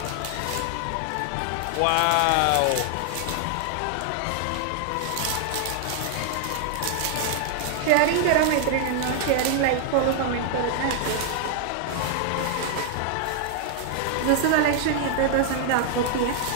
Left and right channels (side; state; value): both; different; correlation 0.00